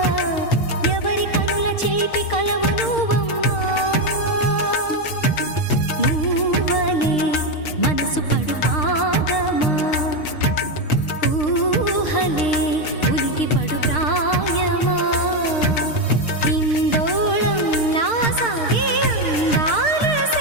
ఎవరి కనుల చేపి కలవు నువ్వమ్మా. మూవలే మనసు పడు పాదమా, ఊహలే ఉలికి పడు ప్రాయమా. ఇందోళంలా సాగే అందాల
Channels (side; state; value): right; late; 6.6 ms